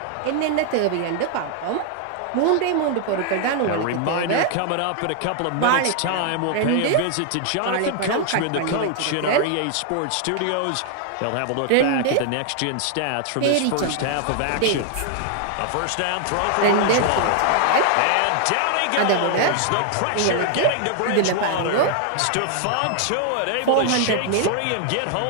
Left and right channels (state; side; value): different; both; correlation 0.00